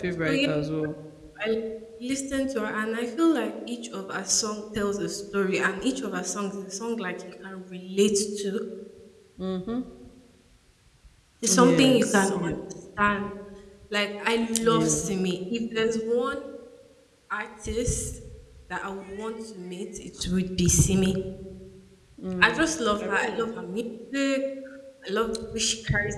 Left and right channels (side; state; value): both; identical; correlation 1.00